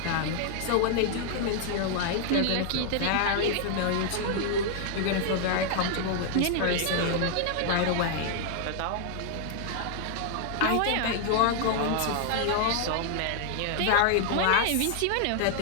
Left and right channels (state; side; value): different; both; correlation 0.00